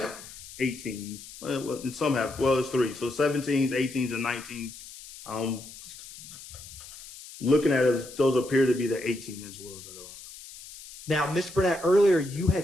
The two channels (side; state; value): left; noise; hiss, 16 dB below the sound